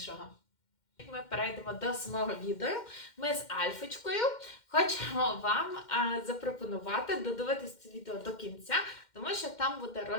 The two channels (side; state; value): right; late; 2.1 ms